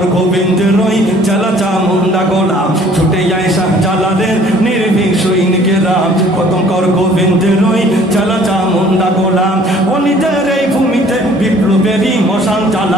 গোবিন্দের ওই চেলা চামুন্ডা গোলা। ছুটে যায় শাহজালালের নির্ভীক সৈনিকেরা, খতম কর গোবিন্দের ওই চেলা চামুন্ডা গোলা। অলিদের এই ভূমিতে বিপ্লবেরই মশাল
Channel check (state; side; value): normal; both; correlation 0.55